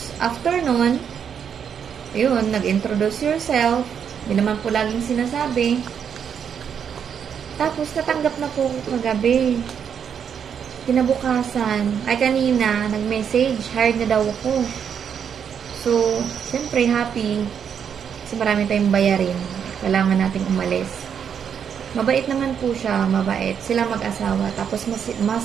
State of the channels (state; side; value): quieter; left; 7.7 dB